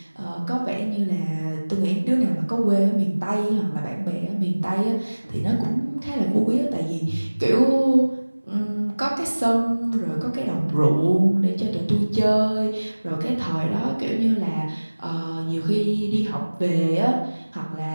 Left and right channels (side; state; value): both; inverted; correlation -1.00